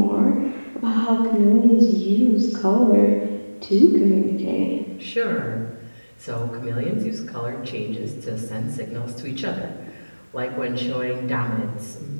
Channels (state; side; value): inverted; both; correlation -1.00